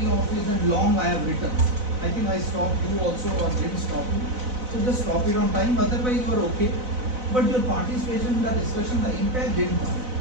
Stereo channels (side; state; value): left; late; 4.0 ms